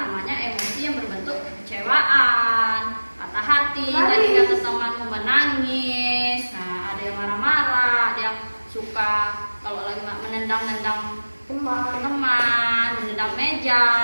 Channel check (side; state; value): both; inverted; correlation -1.00